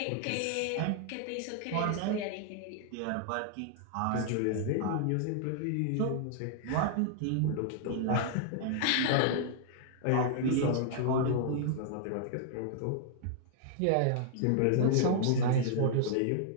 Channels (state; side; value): different; both; correlation -0.01